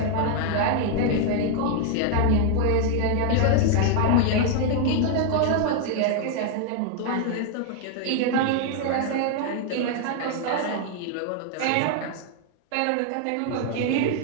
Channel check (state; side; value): different; both; correlation 0.00